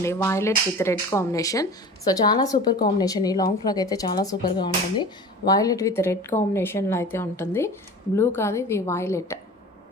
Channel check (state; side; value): normal; both; correlation 0.38